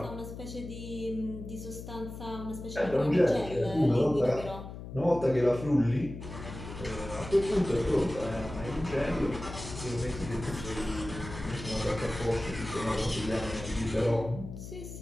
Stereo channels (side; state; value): left; noise; hum, 11 dB below the sound